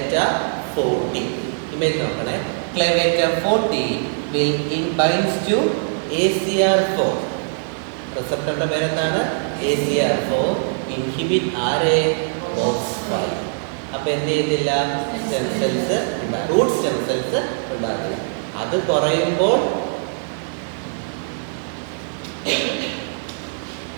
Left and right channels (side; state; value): left; silent; 65 dB below the other